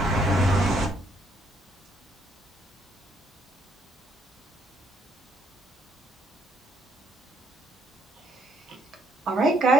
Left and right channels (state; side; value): normal; both; correlation 0.69